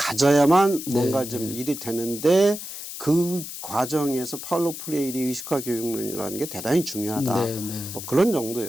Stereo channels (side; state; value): left; noise; hiss, 9 dB below the sound